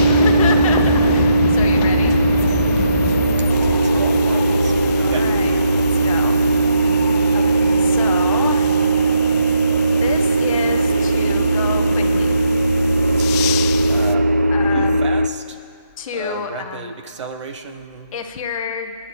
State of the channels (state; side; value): inverted; both; correlation -0.77